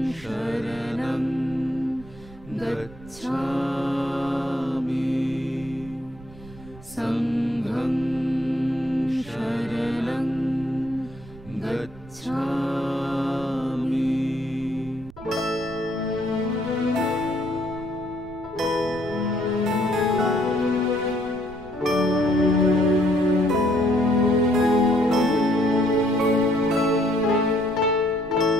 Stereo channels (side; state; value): right; noise; rumble, 19 dB below the sound